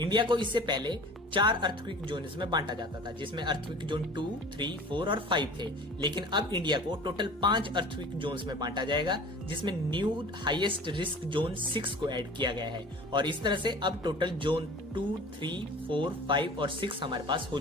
को इससे पहले 4 अर्थक्वेक जोन्स में बांटा जाता था जिसमें अर्थक्वेक जोन 2, 3, 4 और 5 थे, लेकिन अब इंडिया को टोटल 5 अर्थक्वेक जोन्स में बांटा जाएगा जिसमें न्यू हाईएस्ट रिस्क जोन 6 को ऐड किया गया है और इस तरह से अब टोटल जोन 2, 3, 4, 5 और 6 हमारे पास हो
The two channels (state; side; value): normal; both; correlation 0.42